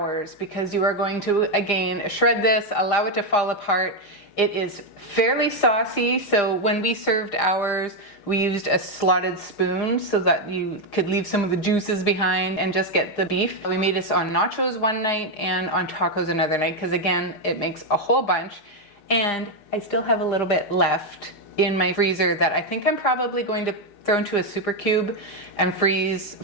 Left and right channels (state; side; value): late; right; 6.5 ms